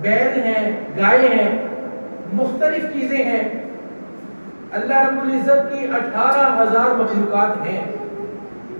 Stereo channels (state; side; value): inverted; both; correlation -1.00